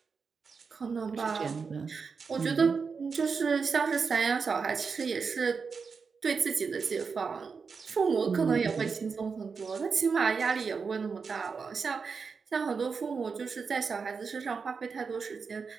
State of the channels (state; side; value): quieter; left; 5.3 dB